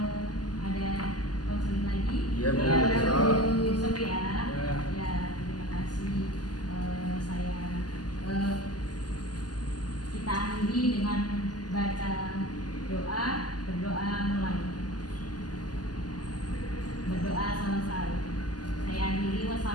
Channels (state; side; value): late; right; 0.70 ms